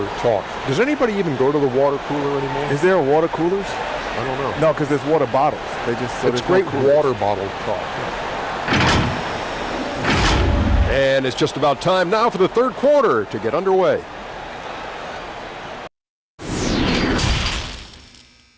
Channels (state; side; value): identical; both; correlation 1.00